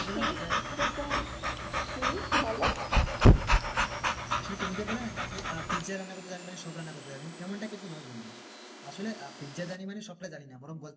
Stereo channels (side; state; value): both; identical; correlation 1.00